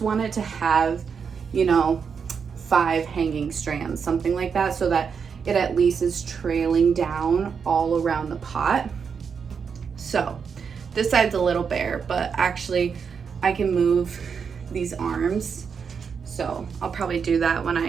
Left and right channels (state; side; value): quieter; left; 6.3 dB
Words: it to have, you know, 5 hanging strands, something like that, so that it at least is trailing down all around the pot. So this side's a little bare, but actually I can move these arms. So I'll probably do that when